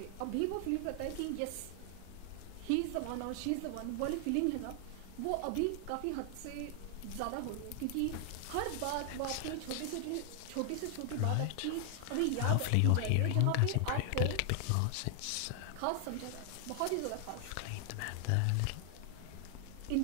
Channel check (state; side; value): different; both; correlation 0.00